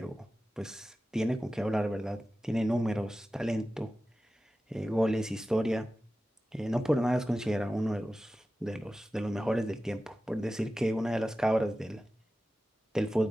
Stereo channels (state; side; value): normal; both; correlation 0.94